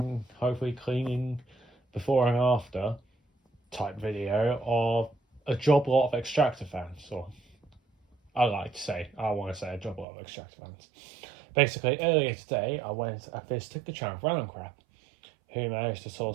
hopefully cleaning before and after type video of a Joblot of extractor fans, or I want to say a Joblot of extractor fans. Basically, earlier today I visited the channel Random Crap, who managed to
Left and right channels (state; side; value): drops out; left; at 10.1 s